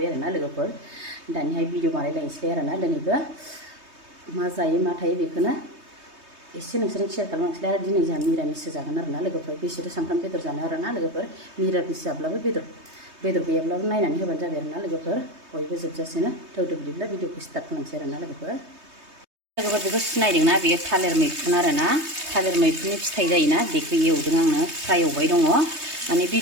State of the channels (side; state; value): left; late; 3.2 ms